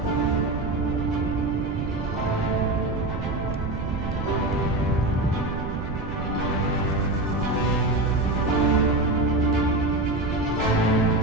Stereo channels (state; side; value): noise; right; rumble, 5 dB below the sound